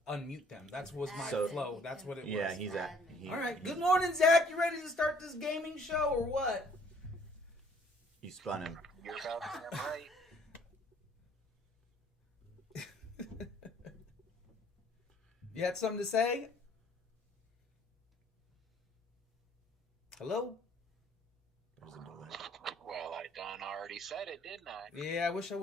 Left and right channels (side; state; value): both; normal; correlation 0.59